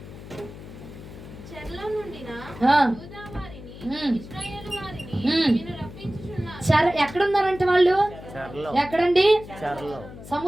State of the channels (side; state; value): left; noise; hum, 15 dB below the sound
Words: చెరలో నుండిన ఆ. యూదా వారిని, ఉమ్. ఇశ్రాయేలు వారిని ఉమ్. నేను రప్పించుచున్నాను. ఎక్కడున్నారంటే వాళ్ళు? చెరలో. ఎక్కడండి? చెరలో.